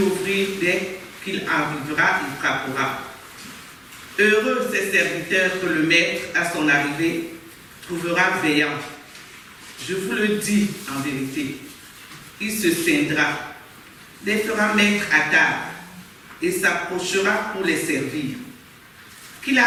dès qu'il arrivera, il frappera. Heureux ces serviteurs que le maître, à son arrivée, trouvera veillants. Je vous le dis en vérité, il se scindra, les fera mettre à table et s'approchera pour les servir. Qu'il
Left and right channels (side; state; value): both; identical; correlation 1.00